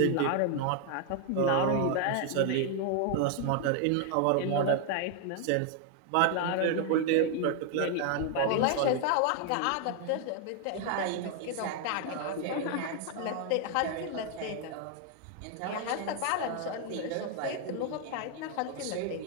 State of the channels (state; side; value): different; both; correlation 0.01